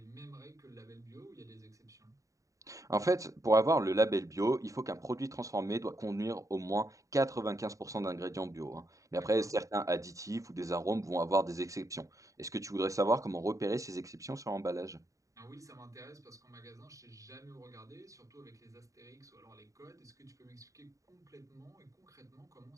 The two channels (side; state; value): left; late; 0.16 ms